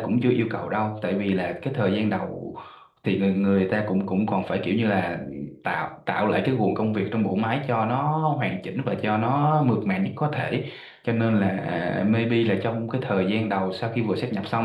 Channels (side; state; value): both; identical; correlation 1.00